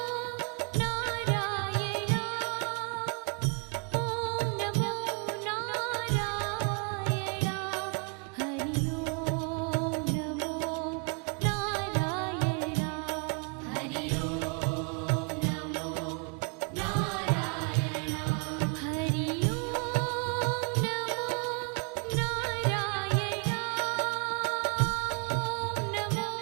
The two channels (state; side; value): quieter; left; 36.4 dB